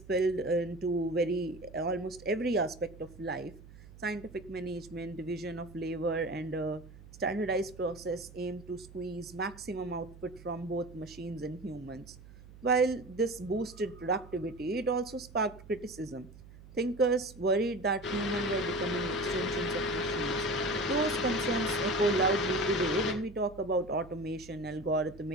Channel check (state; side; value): noise; right; hum, 19 dB below the sound